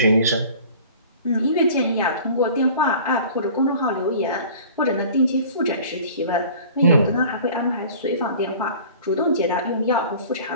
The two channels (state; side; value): inverted; both; correlation -0.45